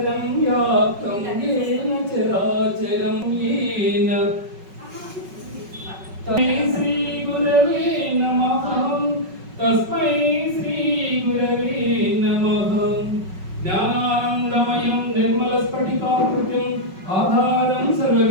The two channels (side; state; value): left; late; 5.3 ms